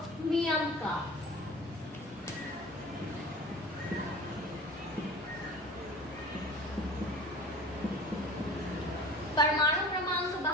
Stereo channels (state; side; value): normal; both; correlation 0.39